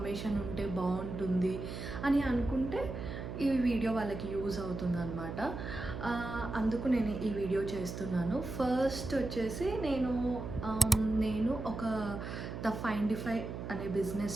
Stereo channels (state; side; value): noise; right; hum, 7 dB below the sound